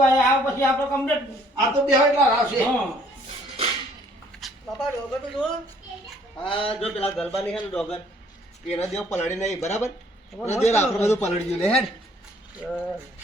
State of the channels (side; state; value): both; normal; correlation 0.61